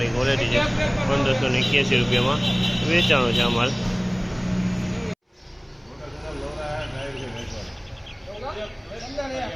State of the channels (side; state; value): both; identical; correlation 1.00